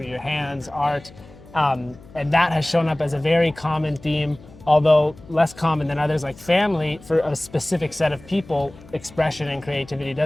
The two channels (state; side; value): noise; left; hum, 22 dB below the sound